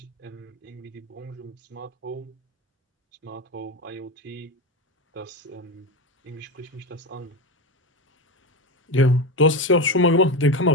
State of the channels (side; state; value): both; normal; correlation 0.18